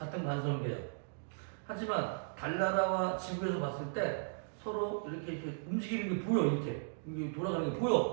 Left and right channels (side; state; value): left; silent; digital silence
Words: 관성계야. 하지만 달나라와 지구에서 봤을 때 서로 이렇게 움직이는 게 보여. 이렇게. 이게 돌아가는 게